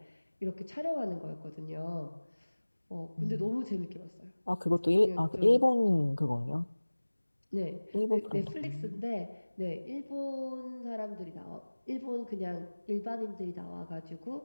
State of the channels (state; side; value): inverted; both; correlation -1.00